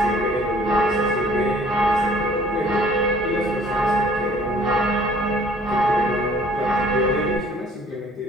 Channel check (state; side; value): normal; both; correlation 0.55